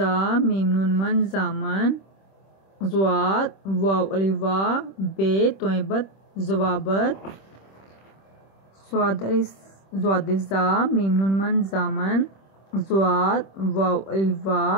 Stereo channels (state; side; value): late; right; 26 ms